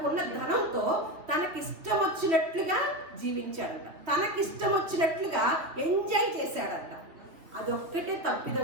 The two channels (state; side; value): late; left; 3.4 ms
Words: ధనంతో తనకిష్టం వచ్చినట్లుగా జీవించాడంట, తనకిష్టం వచ్చినట్లుగా ఎంజాయ్ చేశాడంట. అదొక్కటే